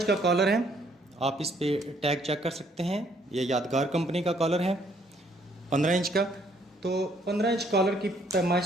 का कॉलर है, आप इस पे टैग चेक कर सकते हैं। ये यादगार कंपनी का कॉलर है 15 इंच का। तो 15 इंच कॉलर की पैमाइश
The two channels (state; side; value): normal; both; correlation 0.66